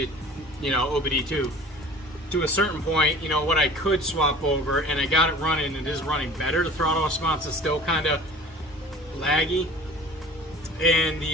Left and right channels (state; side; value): normal; both; correlation 0.44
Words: OBD2 to a certain point, what I could swap over, and I got it running. It is running better. The throttle response is still kind of laggy, and